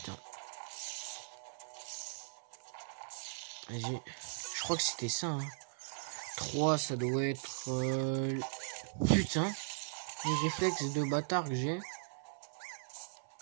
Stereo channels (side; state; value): left; silent; 52 dB below the other